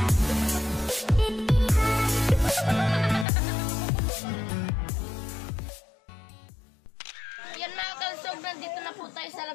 Yan mga kalusog, nandito na po tayo sa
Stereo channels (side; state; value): right; drops out; at 3.2 s